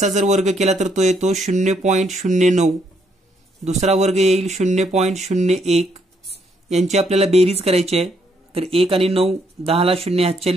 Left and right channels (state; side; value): normal; both; correlation 0.72